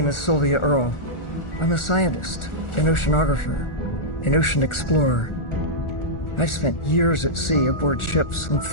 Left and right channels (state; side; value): late; right; 1.4 ms